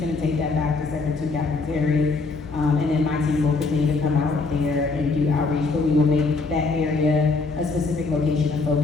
take that back to Sector 2, Captain Terry. And then my team will continue to come out there and do outreach, but we will make that area a specific location of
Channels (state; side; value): quieter; right; 4.0 dB